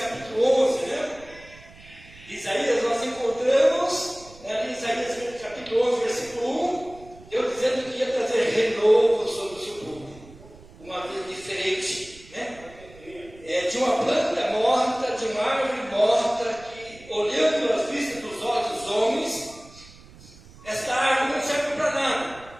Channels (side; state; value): right; noise; rumble, 22 dB below the sound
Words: 11, né? Isaías, nós encontramos, né, em Isaías capítulo 11, versículo 1, Deus dizendo que ia trazer renovo sobre o seu povo, uma vida diferente, né? De uma planta morta, de uma árvore morta, que olhando as vistas dos olhos dos homens, esta árvore não serve para nada,